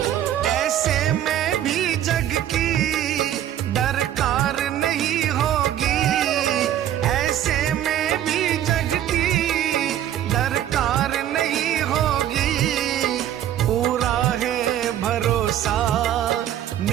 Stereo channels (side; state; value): left; quieter; 11.4 dB